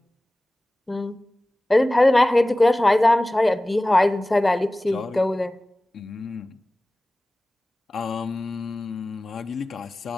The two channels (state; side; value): normal; both; correlation 0.98